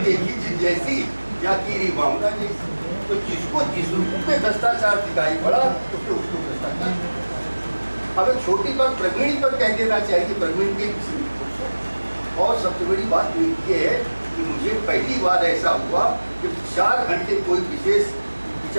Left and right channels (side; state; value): both; inverted; correlation -1.00